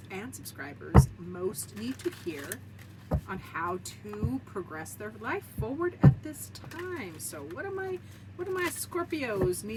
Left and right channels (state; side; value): identical; both; correlation 1.00